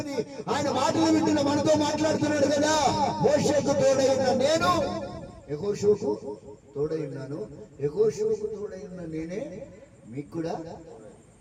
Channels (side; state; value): both; identical; correlation 1.00